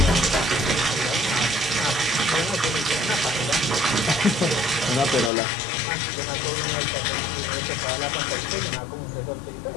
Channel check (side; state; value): right; drops out; at 5.3 s